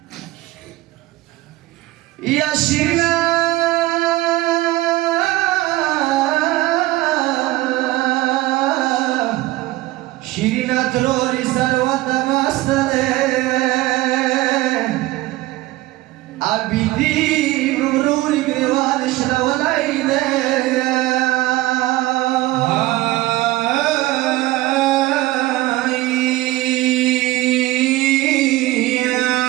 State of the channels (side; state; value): left; quieter; 17.9 dB